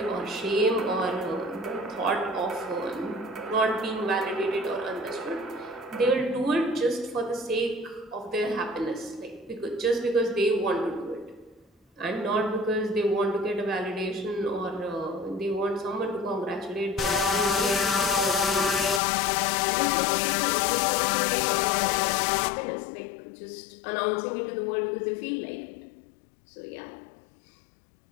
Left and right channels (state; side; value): drops out; right; at 19.0 s